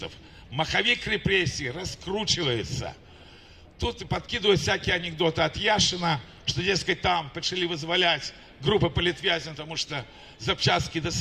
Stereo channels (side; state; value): both; identical; correlation 1.00